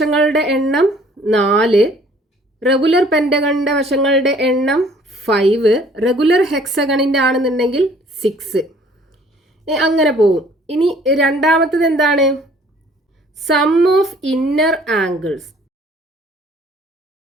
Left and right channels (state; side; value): normal; both; correlation 0.56